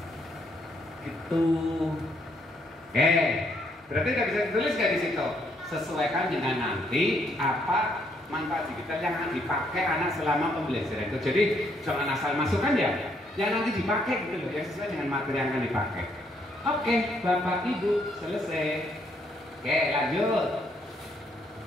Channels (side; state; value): both; normal; correlation 0.71